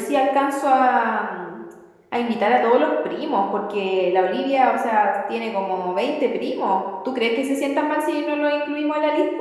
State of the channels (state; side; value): identical; both; correlation 1.00